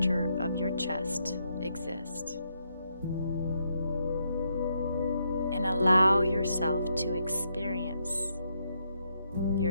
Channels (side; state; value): both; inverted; correlation -0.78